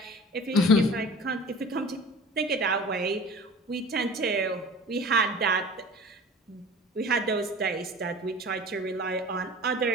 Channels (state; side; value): normal; both; correlation 0.41